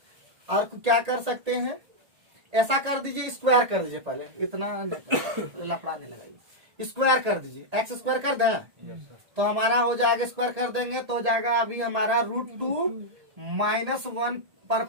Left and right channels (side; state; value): left; late; 1.8 ms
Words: और क्या कर सकते हैं, ऐसा कर दीजिए, स्क्वायर कर दीजिए पहले, इतना लफड़ा नहीं लगाइए, स्क्वायर कर दीजिए, एक्स स्क्वायर कर दें यस सर। तो हमारा हो जाएगा, स्क्वायर कर देंगे तो हो जाएगा अभी हमारा √2 -1 पर